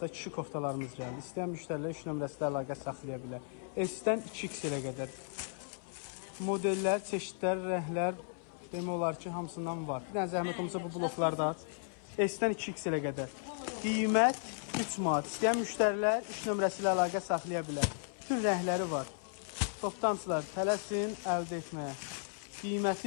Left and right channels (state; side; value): silent; right; 54 dB below the other